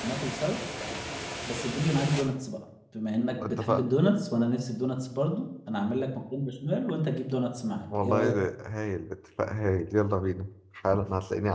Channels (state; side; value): identical; both; correlation 1.00